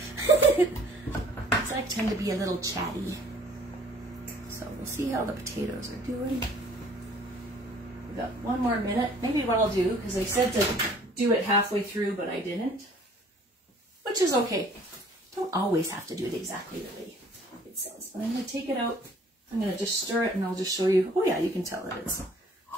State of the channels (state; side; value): normal; both; correlation 0.55